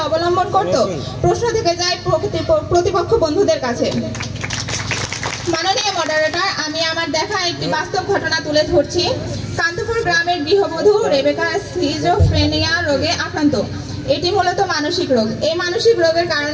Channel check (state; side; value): identical; both; correlation 1.00